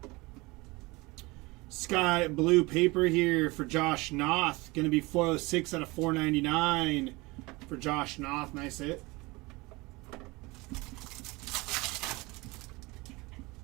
Sky blue paper here for Josh Noth. Going to be 406 out of 499 for Josh Noth. Nice hit.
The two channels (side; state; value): left; quieter; 23.5 dB